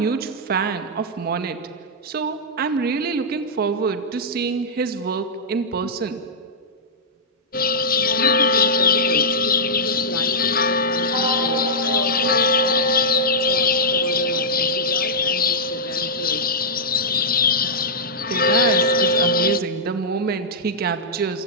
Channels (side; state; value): both; normal; correlation -0.10